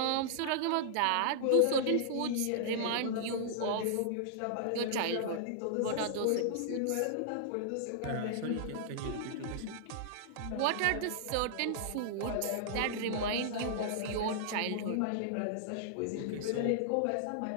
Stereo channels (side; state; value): both; different; correlation -0.01